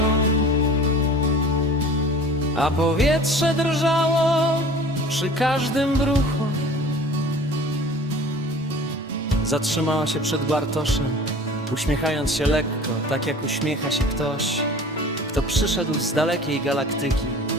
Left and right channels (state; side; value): normal; both; correlation 0.43